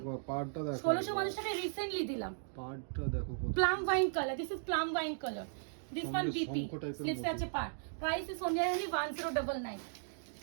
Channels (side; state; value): left; silent; digital silence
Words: পাড়টা দেখো, 1650 টাকা রিসেন্টলি দিলাম। পাড়টা দেখো, plum wine colour, this is plum wine colour, this one BP slips আছে পার। Price is only 1099।